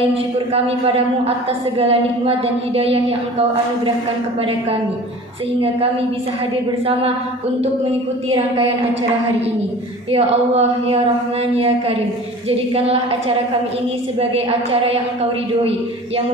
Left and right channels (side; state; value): both; normal; correlation 0.41